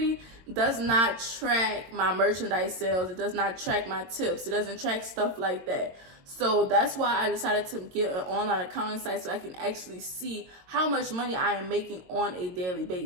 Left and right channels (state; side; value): late; left; 22 ms